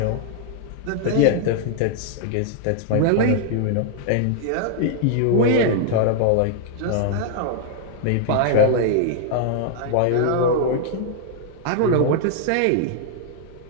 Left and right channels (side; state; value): both; different; correlation 0.00